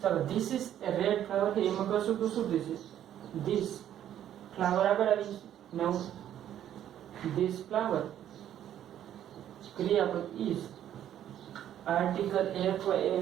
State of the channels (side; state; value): left; quieter; 10.9 dB